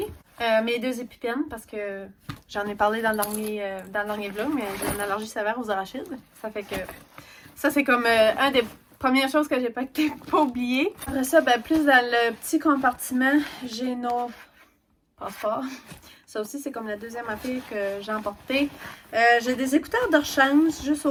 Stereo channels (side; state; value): both; identical; correlation 1.00